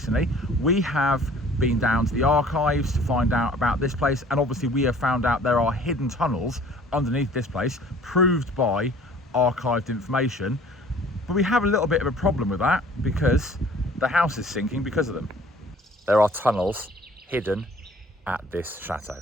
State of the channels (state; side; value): normal; both; correlation 0.51